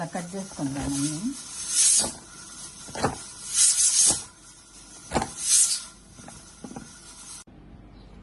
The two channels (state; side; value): identical; both; correlation 1.00